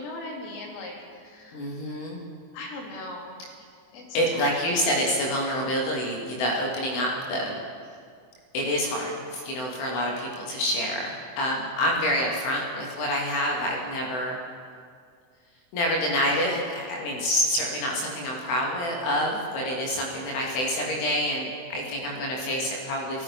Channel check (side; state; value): right; late; 23 ms